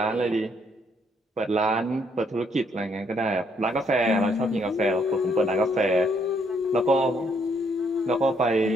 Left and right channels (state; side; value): normal; both; correlation 0.70